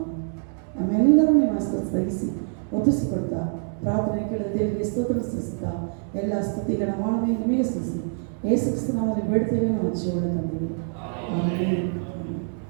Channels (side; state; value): left; silent; 58 dB below the other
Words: ನಮ್ಮೆಲ್ಲರೂ ನಿಮ್ಮ ಸ್ಥಗಿಸಿ ಒಪ್ಪಿಸಿಕೊಡ್ತಾ ಪ್ರಾರ್ಥನೆ ಕೇಳಿದ ದೇವರಿಗೆ ಸ್ತೋತ್ರ ಸಲ್ಲಿಸುತ್ತಾ ಎಲ್ಲ ಸ್ತುತಿಗಳ ಮಾನವೇ ನಿಮಗೆ ಸಲ್ಲಿಸಿ ಯೇಸು ಕ್ರಿಸ್ತನ ನಾಮದಲ್ಲಿ ಬೇಡ್ತೇವೆ, ನಾವು ಜೀವನ ತಂದಿವೆ.